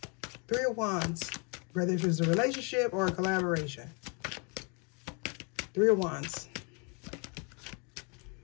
3 of Wands. Whether if it's a relationship or a collaboration. 3 of Wands.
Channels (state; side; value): quieter; right; 33.0 dB